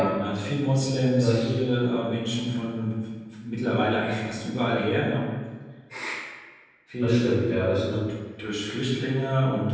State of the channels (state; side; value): identical; both; correlation 1.00